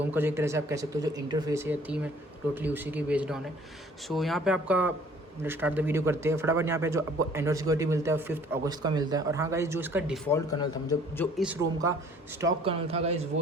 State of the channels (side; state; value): both; normal; correlation 0.55